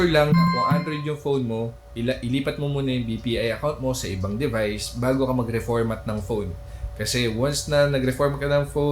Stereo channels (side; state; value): both; identical; correlation 1.00